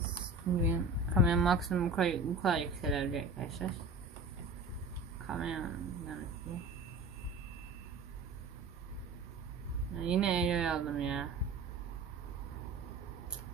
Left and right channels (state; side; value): quieter; left; 3.2 dB